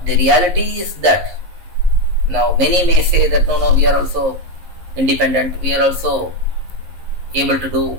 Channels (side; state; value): left; late; 11 ms